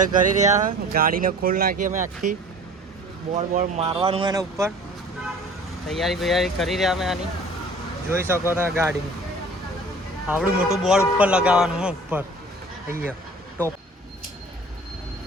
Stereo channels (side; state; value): both; normal; correlation 0.46